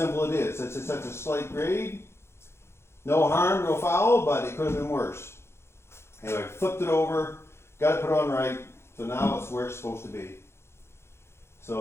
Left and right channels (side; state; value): right; late; 0.12 ms